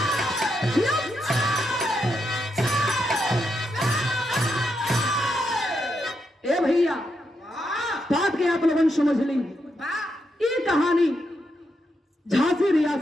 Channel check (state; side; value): normal; both; correlation 0.82